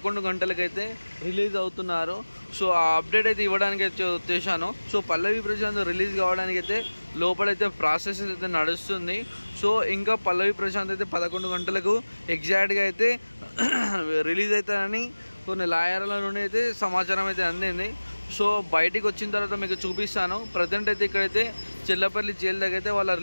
గంటలకైతే రిలీజ్ అవుతున్నారు. సో ఆ అప్డేట్ అయితే ఇవ్వడానికి అయితే వచ్చేసాను. సో పల్లవి ప్రశాంత్ రిలీజ్ కావడానికి అయితే లోపలైతే ప్రాసెస్ అయితే నడుస్తుంది. సో ఇంకా పల్లవి ప్రశాంత్ అయితే 11 గంటలకు ఎగ్జాక్ట్గా అయితే రిలీజ్ అవుతారని కొన్ని లాయర్ల నుండి అయితే సమాచారం అయితే అందింది. సో బయటికి వచ్చిన తర్వాత మీకు చూపిస్తాను. ప్రజెంట్ అయితే ఇక్కడైతే చెల్లపల్లి జైలు దగ్గర అయితే వాళ్ళ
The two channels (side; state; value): both; inverted; correlation -1.00